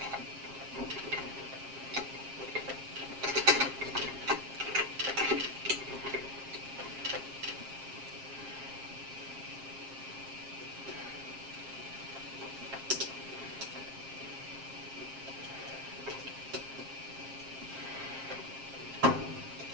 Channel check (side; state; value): left; late; 7.5 ms